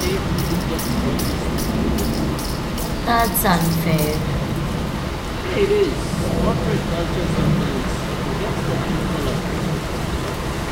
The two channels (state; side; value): identical; both; correlation 1.00